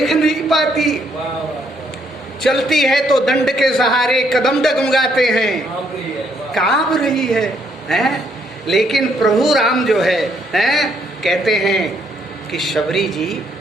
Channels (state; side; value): normal; both; correlation 0.71